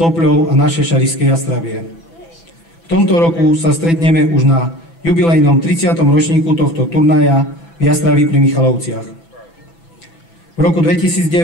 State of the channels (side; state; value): right; late; 6.0 ms